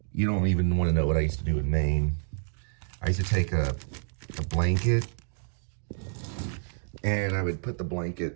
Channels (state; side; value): silent; left; digital silence